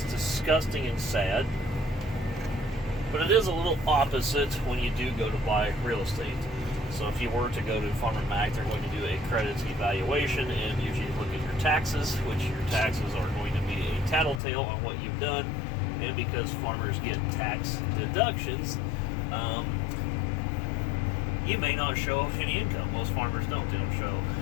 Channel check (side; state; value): right; drops out; at 14.4 s